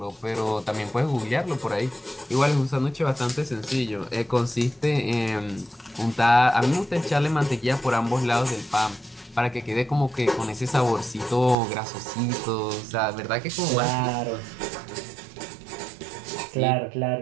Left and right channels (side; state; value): left; drops out; at 11.6 s